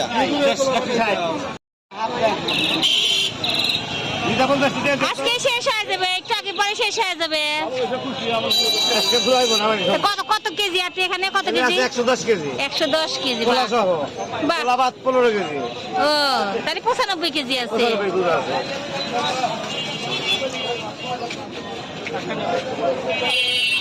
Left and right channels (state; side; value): identical; both; correlation 1.00